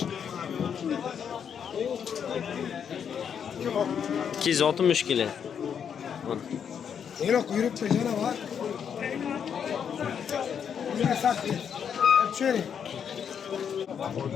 260 kilo. Mana. Yo'q, yuribdi yana bor. Yana satdi. Cherry.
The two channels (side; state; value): right; quieter; 7.7 dB